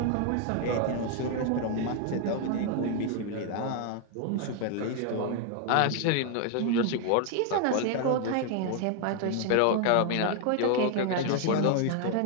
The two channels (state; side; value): different; both; correlation 0.00